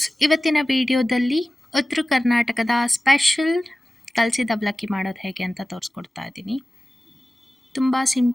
ಇವತ್ತಿನ ವಿಡಿಯೋದಲ್ಲಿ ಉತ್ತರ ಕರ್ನಾಟಕದ ಸ್ಪೆಷಲ್ ಕಲಸಿದ ಅವಲಕ್ಕಿ ಮಾಡೋದು ಹೇಗೆ ಅಂತ ತೋರಿಸ್ಕೊಡ್ತಾ ಇದ್ದೀನಿ. ತುಂಬ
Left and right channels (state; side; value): normal; both; correlation 0.96